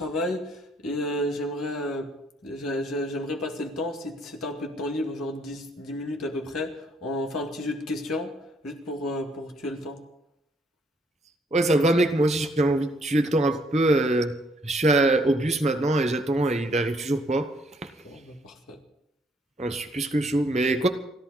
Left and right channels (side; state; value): both; normal; correlation 0.68